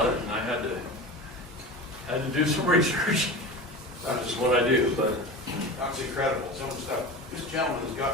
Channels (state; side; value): normal; both; correlation 0.30